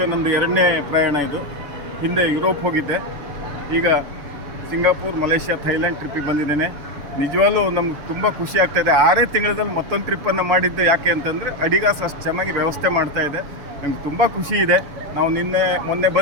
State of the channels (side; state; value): left; late; 6.9 ms